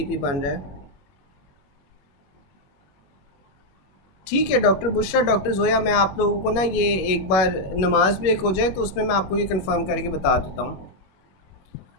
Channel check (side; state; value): right; late; 21 ms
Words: बन रहा है। ठीक है डॉक्टर बुशरा, डॉक्टर जोया, मैं आप लोगों को ना ये एक बार नमाज ब्रेक हो जाए तो उसमें मैं आपको ये कंफर्म करके बता देता हूँ।